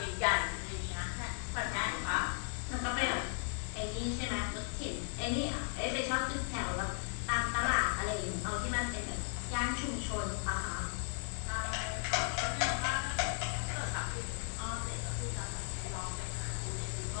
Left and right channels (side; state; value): right; silent; 54 dB below the other